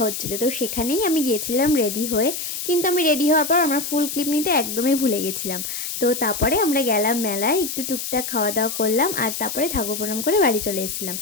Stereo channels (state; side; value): noise; left; hiss, 5 dB below the sound